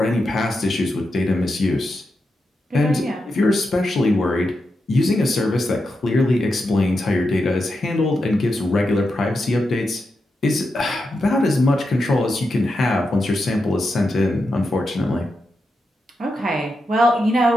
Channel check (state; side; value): normal; both; correlation 0.87